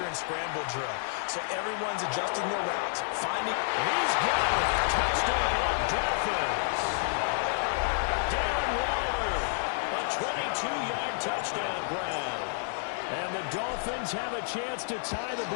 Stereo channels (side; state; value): right; silent; digital silence